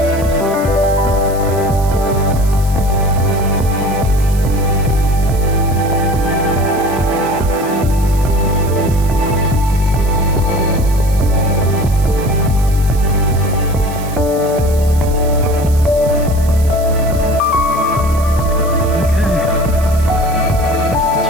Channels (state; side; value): noise; right; hiss, 16 dB below the sound